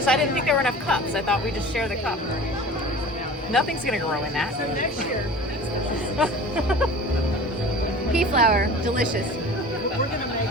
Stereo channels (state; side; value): normal; both; correlation 0.40